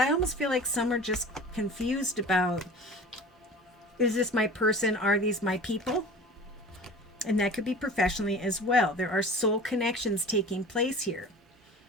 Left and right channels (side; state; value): both; normal; correlation 0.39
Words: almost feel like some are just confused about, is this my person? Are these my people? And that could be professionally as well. There are soul connections taking place here.